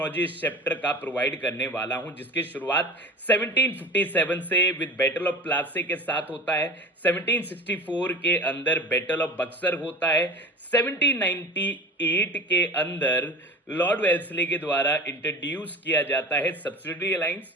इस चैप्टर का प्रोवाइड करने वाला हूं, जिसकी शुरुआत 1757 से विद बैटल ऑफ प्लासी के साथ होता है। 1764 के अंदर बैटल ऑफ बक्सर होता है। 1798 के अंदर लॉर्ड वेल्सली के द्वारा इंट्रोड्यूस किया जाता है सब्सिडरी अलायंस।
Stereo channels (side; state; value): both; normal; correlation 0.36